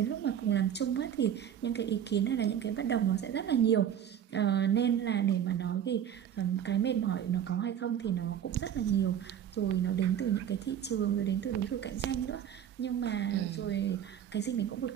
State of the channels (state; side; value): quieter; left; 9.5 dB